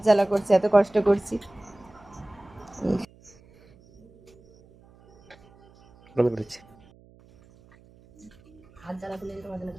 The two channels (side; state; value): right; noise; hum, 27 dB below the sound